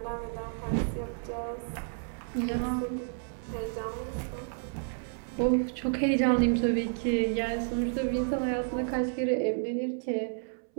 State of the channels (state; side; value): silent; left; 57 dB below the other